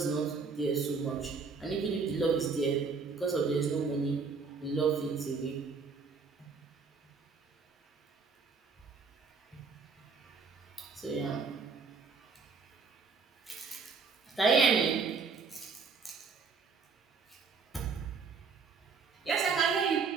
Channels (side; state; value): left; quieter; 5.0 dB